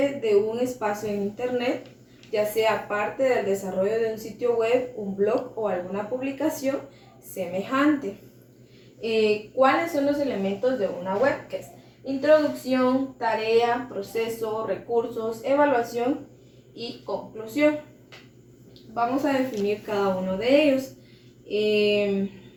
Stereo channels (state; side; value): identical; both; correlation 1.00